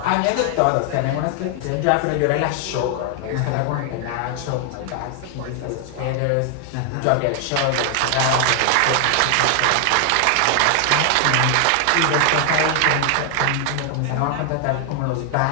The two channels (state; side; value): different; both; correlation 0.00